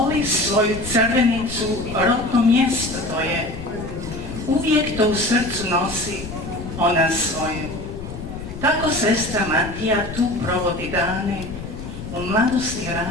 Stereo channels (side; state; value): left; noise; rumble, 10 dB below the sound